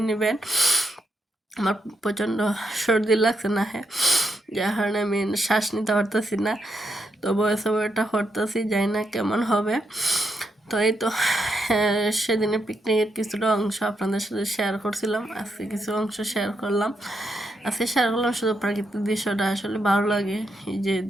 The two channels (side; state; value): both; normal; correlation 0.81